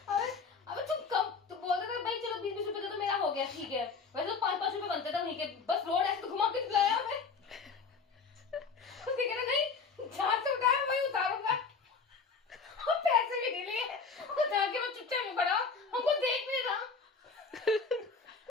अबे तुम कम तो बोल रहे थे भाई चलो 20-20 रुपए तो मेरा हो गया, ठीक है। वैसे तो 5-5 रुपए बनते थे वहीं के, बस रोड ऐसे तो घुमा के लाया हमें। उसने कहा नहीं जहाँ से उठाया वहीं उतारूंगा, और पैसे भी नहीं लिए। और जाके वो चुपचाप में खड़ा, हमको देख नहीं रहा,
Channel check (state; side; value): quieter; right; 5.0 dB